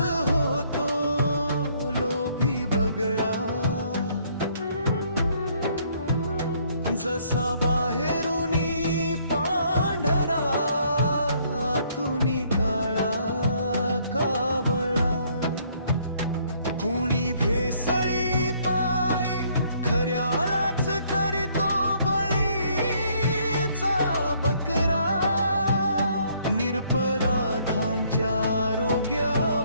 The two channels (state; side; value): inverted; both; correlation -0.65